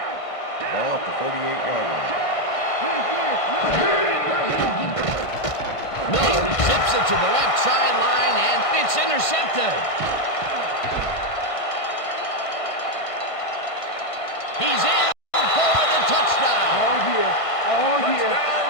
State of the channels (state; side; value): late; right; 1.5 ms